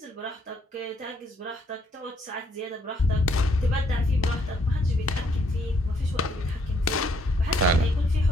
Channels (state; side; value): normal; both; correlation 0.68